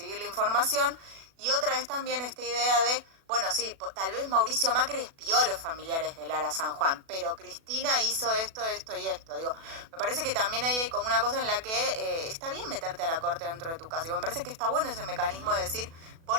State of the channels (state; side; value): late; left; 36 ms